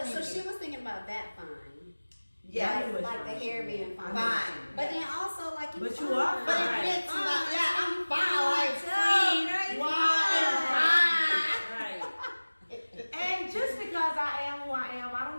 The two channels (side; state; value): both; inverted; correlation -1.00